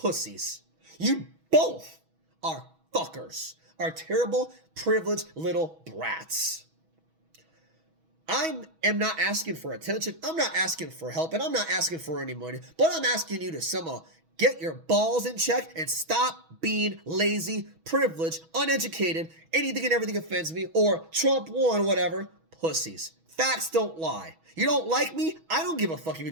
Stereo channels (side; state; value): left; late; 6.2 ms